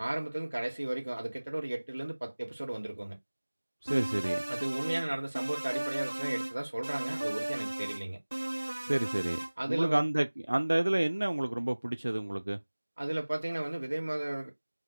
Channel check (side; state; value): both; inverted; correlation -1.00